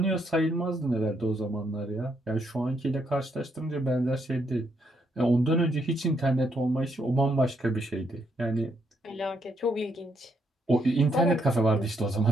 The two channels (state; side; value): normal; both; correlation 0.76